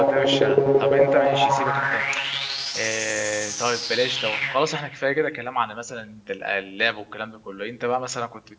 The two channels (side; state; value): both; identical; correlation 1.00